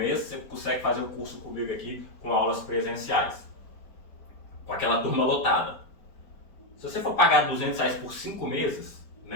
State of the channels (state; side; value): late; right; 4.7 ms